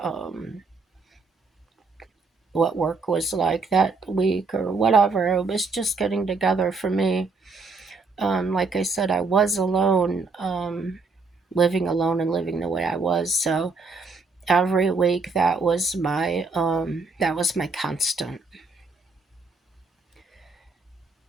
what work was like that week or whatever. It was just getting together for me. Like I said, I was alone, living alone and living the way I was. So every week that was my constant.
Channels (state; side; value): quieter; left; 4.1 dB